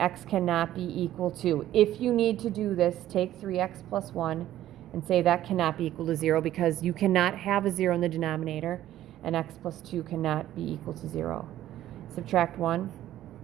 cannot be equal to. If you need to do this, take 3x plus 1 and say that cannot be equal to 0 because you cannot have a 0 in the denominator, and x plus 2 cannot be equal to 0. Subtract 1.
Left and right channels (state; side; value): quieter; left; 13.2 dB